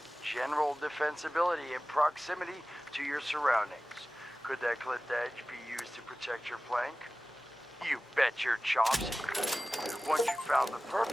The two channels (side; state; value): both; normal; correlation 0.97